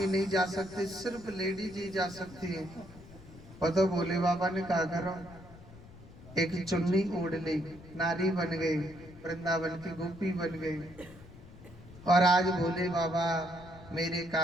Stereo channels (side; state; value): left; noise; rumble, 19 dB below the sound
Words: नहीं जा सकते, सिर्फ लेडीज ही जा सकती है। तो भोले बाबा ने कहा करो, एक चुन्नी ओढ़ ली, नारी बन गई, वृंदावन की गोपी बन गई। और आज भोले बाबा मेरे